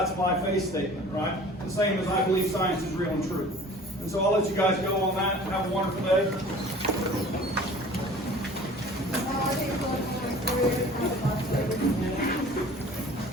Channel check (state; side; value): normal; both; correlation 0.46